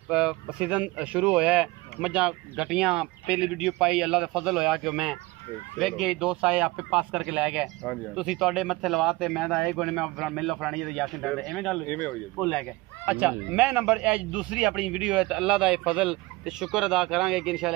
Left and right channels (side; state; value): left; quieter; 21.9 dB